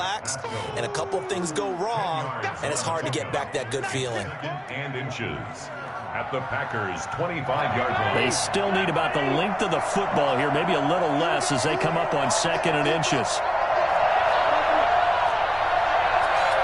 and a couple of things go wrong, and it's hard to get back that good feeling. And inches at the Packers' 25-yard line. They still need about the length of the football here, maybe a little less as they come up on 2nd and inches.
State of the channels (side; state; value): both; identical; correlation 1.00